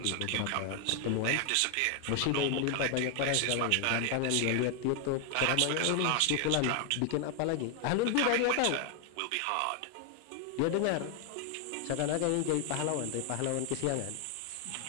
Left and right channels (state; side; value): different; both; correlation 0.00